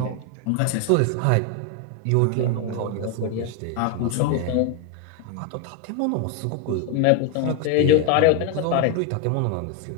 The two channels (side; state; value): both; different; correlation 0.01